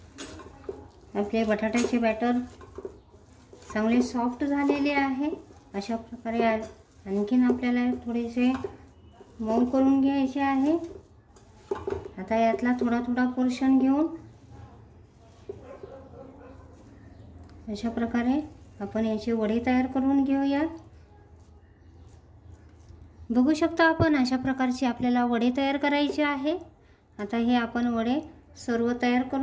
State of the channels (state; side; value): identical; both; correlation 1.00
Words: आपले बटाट्याचे बॅटर चांगले सॉफ्ट झालेले आहे। अशा प्रकारे आणखीन आपल्याला थोडेसे मऊ करून घ्यायचे आहे। आता यातला थोडा थोडा पोर्शन घेऊन अशा प्रकारे आपण याची वडी तयार करून घेऊयात। बघू शकता आपण अशा प्रकारचे आपल्याला वडे तयार करायचे आहे। आता हे आपण वडे सर्व तयार